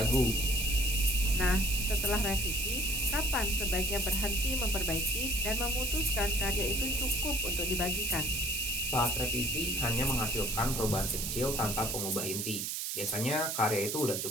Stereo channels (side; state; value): right; noise; hiss, 2 dB below the sound